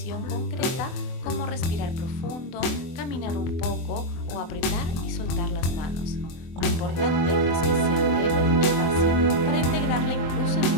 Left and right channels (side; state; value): right; late; 24 ms